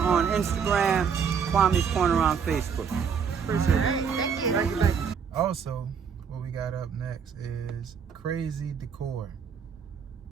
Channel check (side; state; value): left; quieter; 6.7 dB